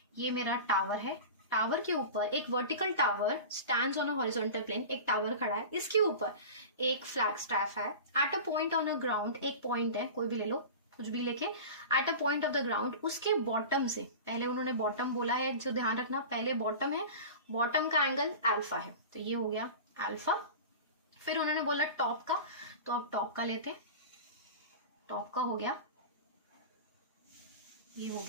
ये मेरा टावर है, टावर के ऊपर एक vertical tower stands on a horizontal plane, एक टावर खड़ा है, इसके ऊपर एक फ्लैग स्टैफ है। At a point on a ground, एक पॉइंट है, कोई भी ले लो, कुछ भी लेके, at a point of the ground, उसके बॉटम से, पहले उन्होंने बॉटम बोला है, जो ध्यान रखना पहले बॉटम है, बॉटम का एंगल अल्फा है, तो ये हो गया अल्फा। फिर उन्होंने बोला टॉप का, तो अब टॉप का लेते हैं, टॉप का हो गया, ये हो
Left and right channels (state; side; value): inverted; both; correlation -0.32